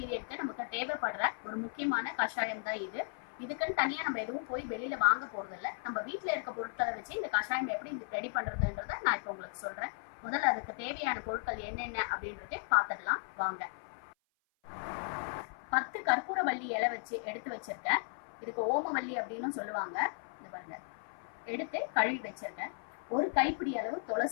நமக்கு தேவைப்படுற ஒரு முக்கியமான கஷாயம் தான் இது. இதுக்குன்னு தனியா நம்ம எதுவும் போய் வெளியில வாங்க போறது இல்லை. நம்ம வீட்டில் இருக்க பொருட்களை வச்சு இந்த கஷாயம் எப்படி ரெடி பண்றதுன்றத நான் இப்போ உங்களுக்கு சொல்றேன். முதல்ல அதுக்கு தேவையான பொருட்கள் என்னென்ன அப்படின்றதே பார்த்துடலாம் வாங்க. 10 கற்பூரவள்ளி இலை வச்சு எடுத்து வச்சிருக்கேன். இதுக்கு ஓமவல்லி அப்படின்னு சொல்லுவாங்க. இந்த பாருங்க, எடுத்து கழுவி வச்சிருக்கேன். ஒரு கைப்பிடி அளவு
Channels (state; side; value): silent; right; 54 dB below the other